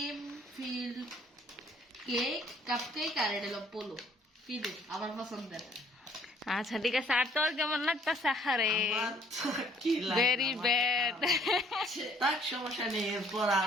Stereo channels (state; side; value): normal; both; correlation 0.60